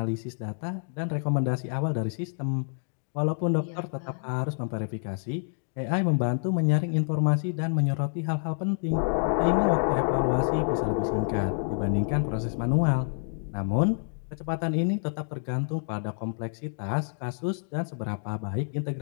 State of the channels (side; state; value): right; silent; digital silence